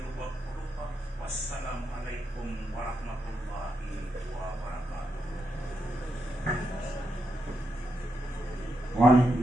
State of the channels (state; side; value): normal; both; correlation 0.83